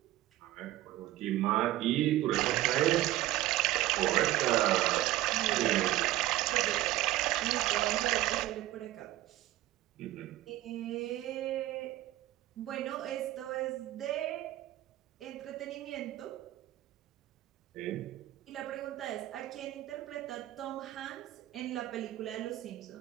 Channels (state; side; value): quieter; left; 15.6 dB